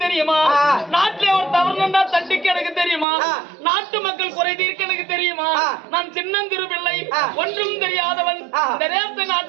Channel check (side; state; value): left; drops out; at 3.1 s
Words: தெரியுமா? நாட்டிலே ஒரு தவறுண்டா தண்டிக்க எனக்கு தெரியுமா? நாட்டு மக்கள் குறை தீர்க்க எனக்கு தெரியுமா? நான் சின்னந்திரு பிள்ளை, ஒன்றும் தெரியாதவன். இந்த தேச